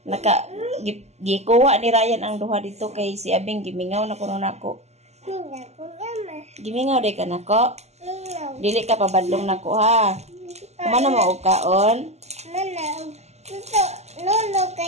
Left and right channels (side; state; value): left; late; 0.32 ms